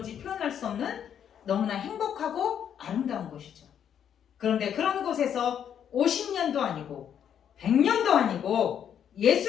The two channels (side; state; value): right; quieter; 8.9 dB